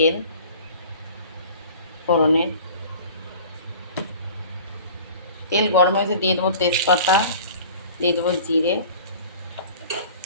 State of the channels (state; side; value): inverted; both; correlation -0.44